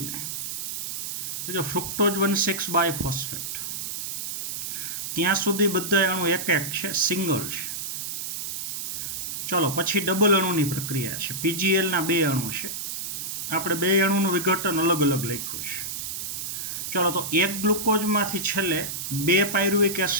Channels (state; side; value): noise; right; hiss, 5 dB below the sound